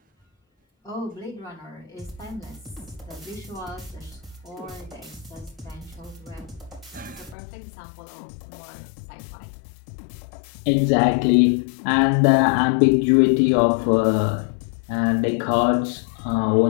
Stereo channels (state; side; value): drops out; right; at 7.4 s